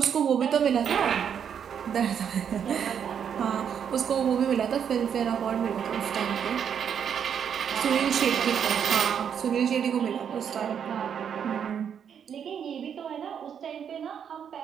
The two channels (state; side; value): quieter; left; 8.0 dB